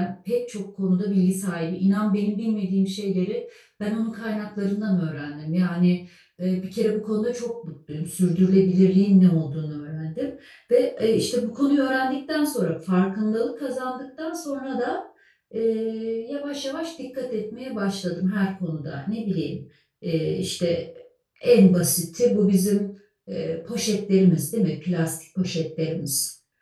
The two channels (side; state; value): both; identical; correlation 1.00